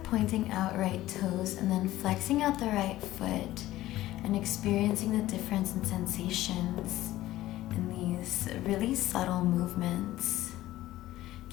pointing out right toes and then flexing out the right foot and experiencing the difference in sensations in these really subtle movements.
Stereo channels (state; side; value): quieter; right; 15.5 dB